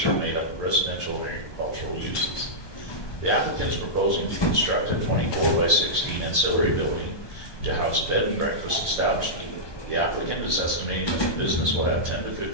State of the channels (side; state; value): right; late; 1.2 ms